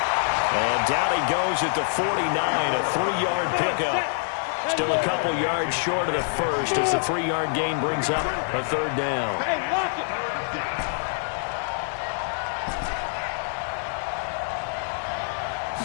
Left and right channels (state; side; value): silent; right; 61 dB below the other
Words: And down he goes at the 49, a 3-yard pickup. Still a couple yards short of the first as the 3-yard gain brings up a 3rd down. Hey, lock it.